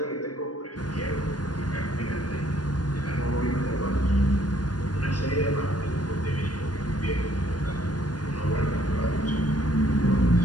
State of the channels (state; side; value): late; right; 0.69 ms